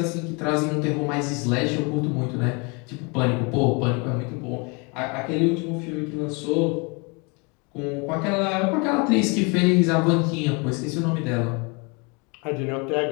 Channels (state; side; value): quieter; right; 30.9 dB